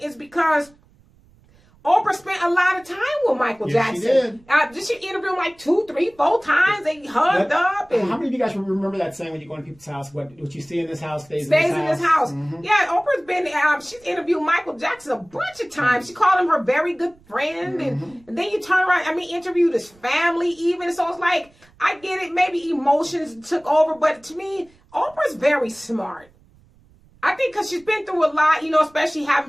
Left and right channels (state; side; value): noise; right; rumble, 30 dB below the sound